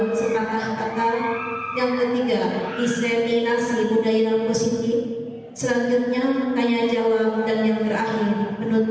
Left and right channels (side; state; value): both; identical; correlation 1.00